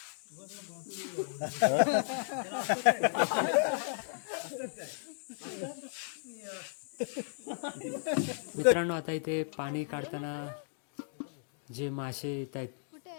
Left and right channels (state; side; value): silent; right; digital silence